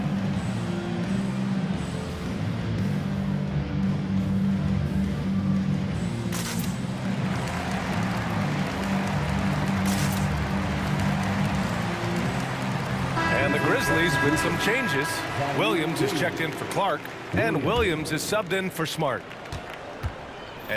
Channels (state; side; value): identical; both; correlation 1.00